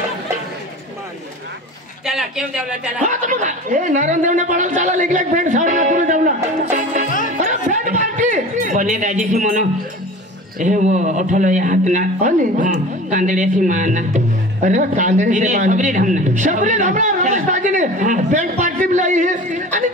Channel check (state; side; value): normal; both; correlation 0.37